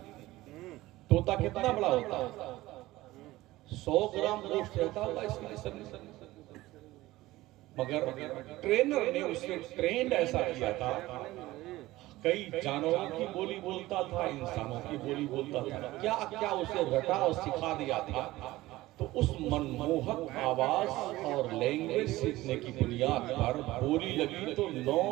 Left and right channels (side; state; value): left; quieter; 17.8 dB